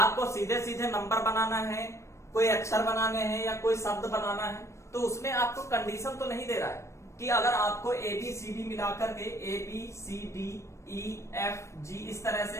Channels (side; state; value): right; late; 0.14 ms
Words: सीधे सीधे नंबर बनाना है, कोई अक्षर बनाने हैं या कोई शब्द बनाना है, तो उसमें आपको कंडीशन तो नहीं दे रहा है कि अगर आपको ABCD मिलाकर के ABCDEFG इस तरह से